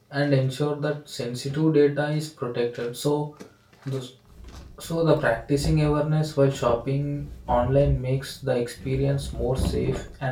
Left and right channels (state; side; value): identical; both; correlation 1.00